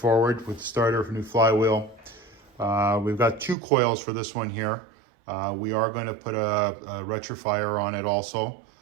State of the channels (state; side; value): drops out; left; at 3.6 s